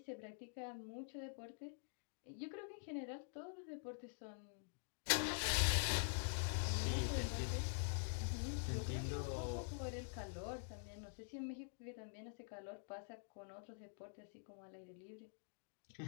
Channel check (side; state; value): right; silent; digital silence